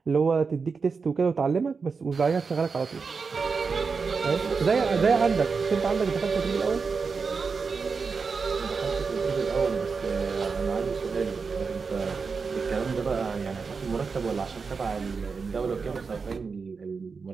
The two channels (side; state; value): left; quieter; 5.0 dB